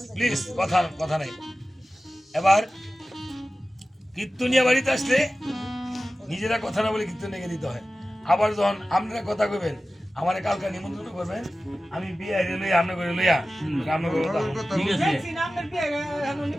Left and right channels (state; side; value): normal; both; correlation 0.95